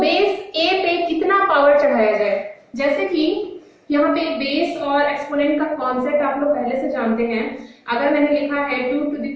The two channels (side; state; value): both; identical; correlation 1.00